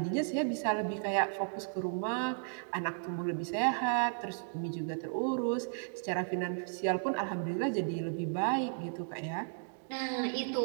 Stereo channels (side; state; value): left; silent; digital silence